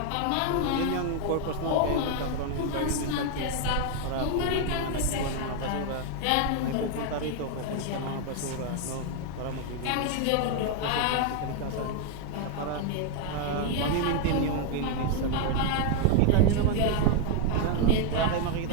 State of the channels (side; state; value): both; different; correlation 0.01